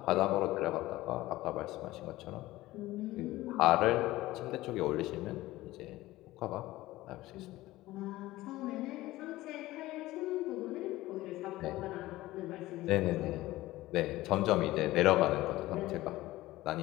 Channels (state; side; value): quieter; right; 17.4 dB